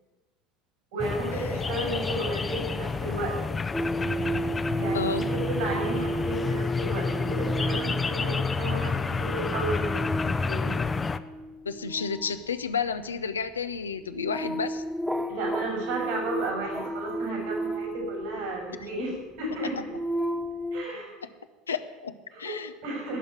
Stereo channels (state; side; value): normal; both; correlation 0.54